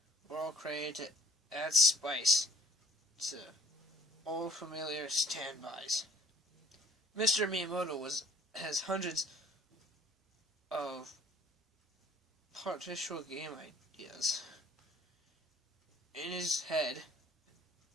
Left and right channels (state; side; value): normal; both; correlation 0.54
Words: were all created to add spice to all familiar standbys. Mr. Miyamoto has hundreds of partial game ideas in his head